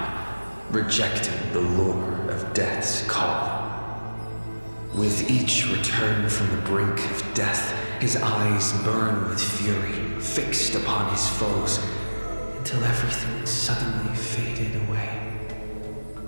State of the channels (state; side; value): inverted; both; correlation -1.00